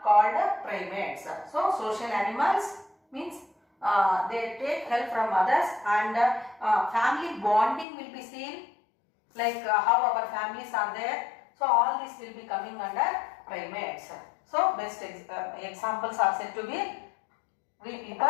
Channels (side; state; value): right; drops out; at 7.9 s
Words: called primates. So social animals means they take help from others, and family bonding will be seen, like how our families are there. So all this will be coming under primates. So best examples are said to be we